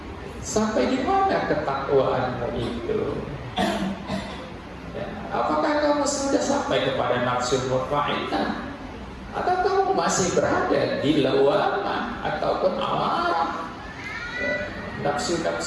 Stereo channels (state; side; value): identical; both; correlation 1.00